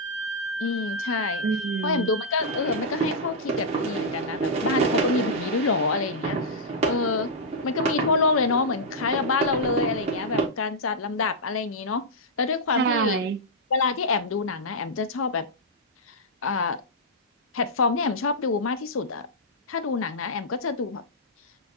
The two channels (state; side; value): normal; both; correlation -0.08